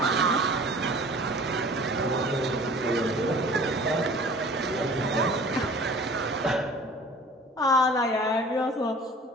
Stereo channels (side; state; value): both; normal; correlation 0.46